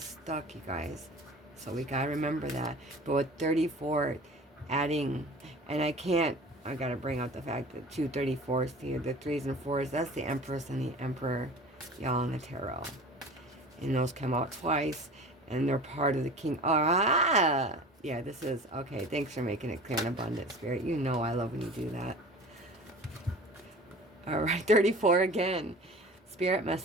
stuck, you guys. So we gotta remember that. But with 34, adding, and I gotta bring out the fact that 2 34s here, the 3s and 4s, that's the Empress and the Emperor, y'all, in the tarot. And those come out twice, and they're part of the King. Ah! Yeah, this is, okay, thanks for making it clear and abundant, Spirit. You know I love when you do that. All right, 34 again. Spirit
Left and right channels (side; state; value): both; normal; correlation 0.40